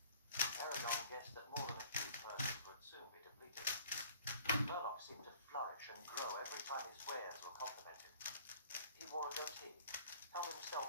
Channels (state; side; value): inverted; both; correlation -0.52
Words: Aragon guessed that more than a few purses would soon be depleted. Murloc seemed to flourish and grow every time his wares were complimented. He wore a goatee, held